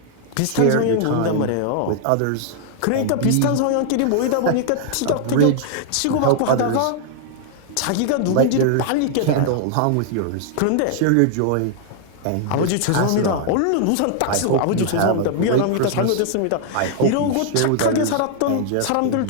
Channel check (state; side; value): different; both; correlation -0.01